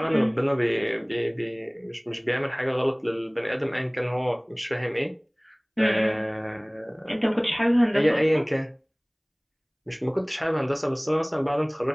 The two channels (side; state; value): both; identical; correlation 1.00